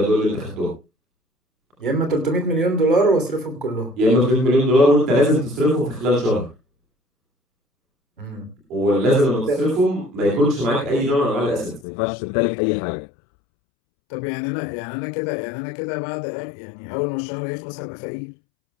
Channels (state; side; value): drops out; right; at 11.9 s